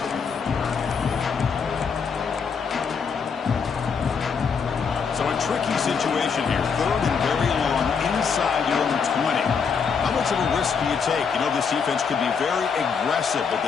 So a tricky situation here. Third and very long inside your own 20. How much of a risk do you take? You know this defense could be very aggressive at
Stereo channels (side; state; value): right; quieter; 6.0 dB